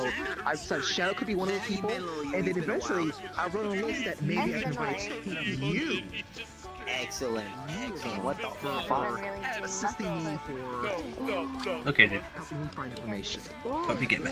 I decided Shadow could be one of the people, and then eventually I wrote a list that maybe I can invite you. Excellent. What the fuck? Assisting me for Okay, dude. helping me find information. Hope you get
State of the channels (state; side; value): identical; both; correlation 1.00